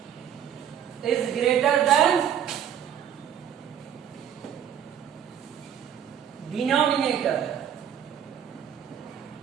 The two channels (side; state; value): left; quieter; 9.3 dB